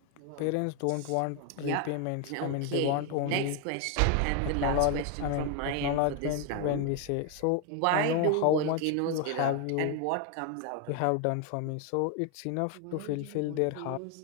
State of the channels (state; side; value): different; both; correlation 0.01